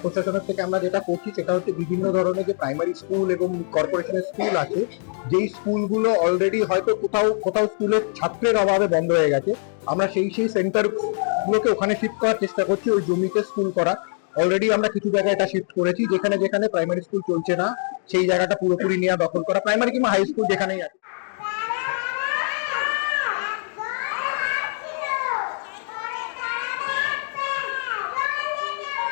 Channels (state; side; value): silent; right; 63 dB below the other